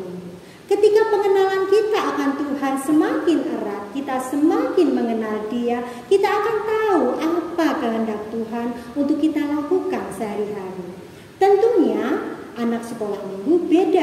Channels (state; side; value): identical; both; correlation 1.00